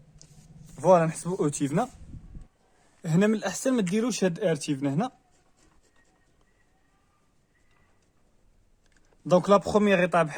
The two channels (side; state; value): both; identical; correlation 1.00